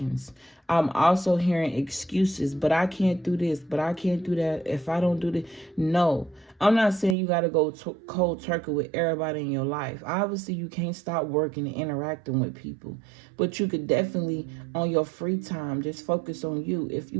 I'm also hearing excuses, but I can't do this, but I can't do that if I don't do this. No, I'm not saying you got to go cold turkey with everybody in your life. Obviously, you can't stop working and interacting with people, but you could definitely, on your free time, just focus on you. If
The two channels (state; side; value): drops out; left; at 7.2 s